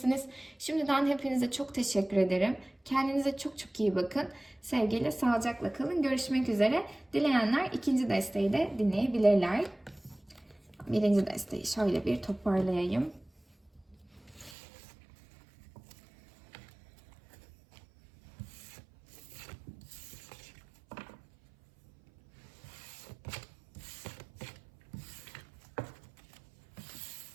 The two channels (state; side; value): drops out; left; at 14.6 s